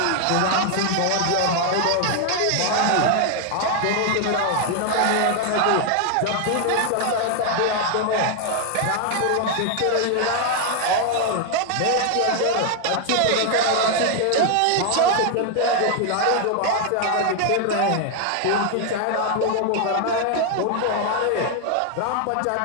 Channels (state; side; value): different; both; correlation 0.00